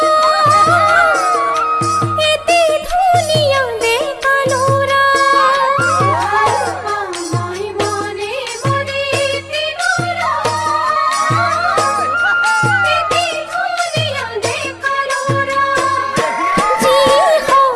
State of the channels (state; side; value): identical; both; correlation 1.00